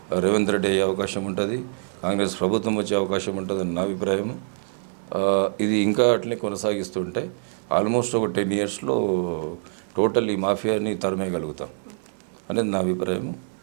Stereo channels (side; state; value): left; silent; 62 dB below the other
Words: రేవంత్ రెడ్డి అయ్యే అవకాశం ఉంటుంది, కాంగ్రెస్ ప్రభుత్వం వచ్చే అవకాశం ఉంటుందని నా అభిప్రాయం. ఇది ఇంకా అట్లనే కొనసాగిస్తుంటే ఆల్మోస్ట్ ఒక 10 ఇయర్స్లో టోటల్ ఈ మాఫియాని తరిమేయగలుగుతాం అనేది నా అభిప్రాయం.